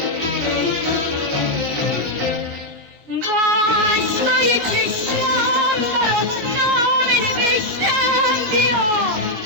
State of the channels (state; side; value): late; left; 19 ms